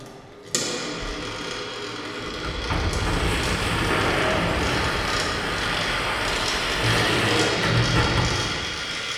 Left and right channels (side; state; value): both; identical; correlation 1.00